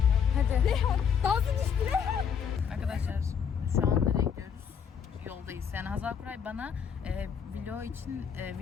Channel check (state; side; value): quieter; right; 7.3 dB